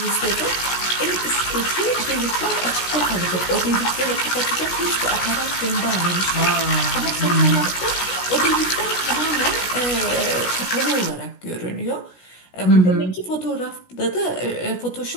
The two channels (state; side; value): late; right; 16 ms